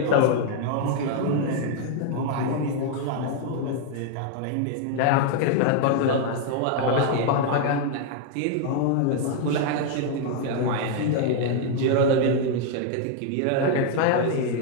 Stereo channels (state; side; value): different; both; correlation 0.00